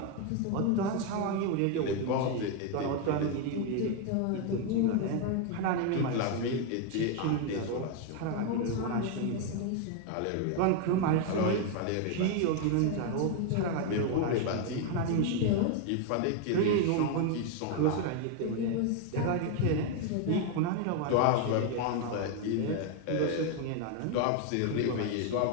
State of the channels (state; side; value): different; both; correlation 0.01